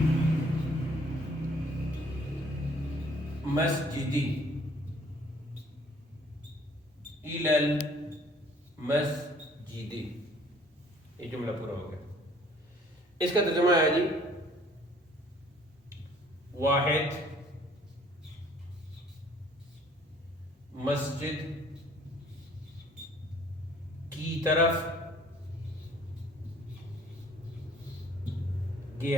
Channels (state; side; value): normal; both; correlation 0.57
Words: المسجد. إلى المسجد، یہ جملہ پورا ہو گیا. اس کا ترجمہ ہے جی واحد مسجد کی طرف